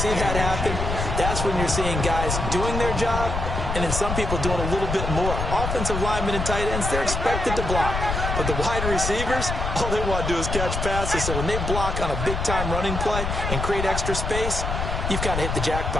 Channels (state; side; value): noise; left; rumble, 3 dB below the sound